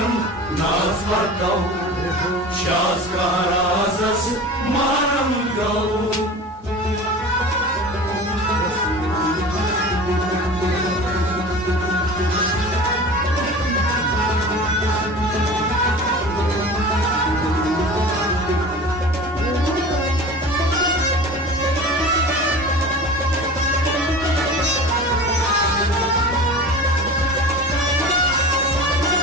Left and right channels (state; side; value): normal; both; correlation 0.36